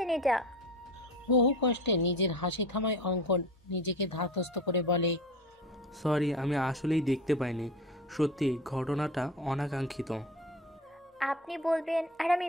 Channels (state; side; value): normal; both; correlation 0.33